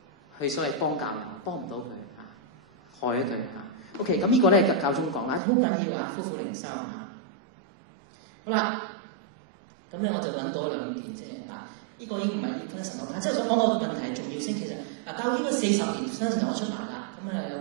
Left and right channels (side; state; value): left; drops out; at 5.4 s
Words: 去所謂幫教友，幫唔到佢害咗佢。OK， 咁呢個咧教宗講好緊要夫婦靈修好啦，咁咧我就揾到兩段，即係呢個已經唔係分得神學，但係即係想講個問題係重要性。其實教會應該40年新神學都出埋啦，咁有